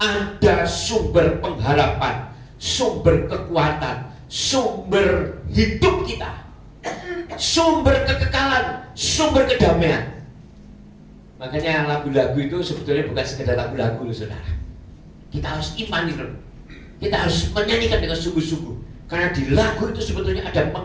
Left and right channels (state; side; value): identical; both; correlation 1.00